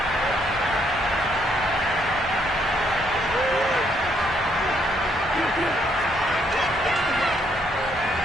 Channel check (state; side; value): normal; both; correlation 0.71